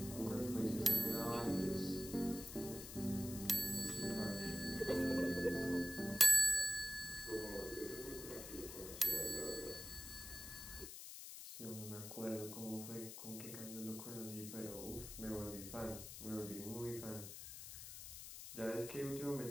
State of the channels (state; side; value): noise; left; hiss, 10 dB below the sound